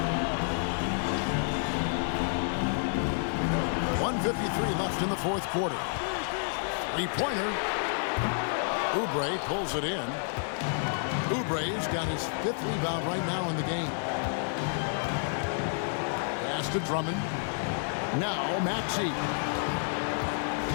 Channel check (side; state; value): right; silent; digital silence